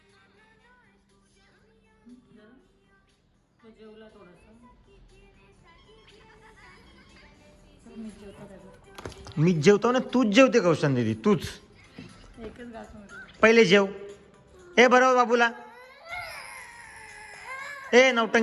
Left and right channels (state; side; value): identical; both; correlation 1.00